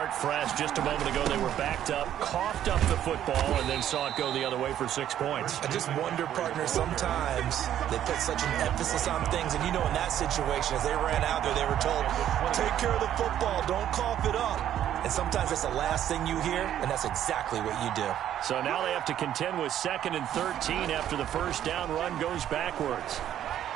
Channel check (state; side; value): quieter; left; 11.0 dB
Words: fresh. Just a moment ago, they were backed up, coughed up the football, and then saw it go the other way for 6 points. I just wonder, partner, sometimes they put such an emphasis on things. And, you know, in that situation, as they ran out there, they were told, take care of the football, don't cough it up. And sometimes that's the last thing you hear, and that's exactly what you do. So now they have to contend with 2nd and 13 after the first down run goes backwards.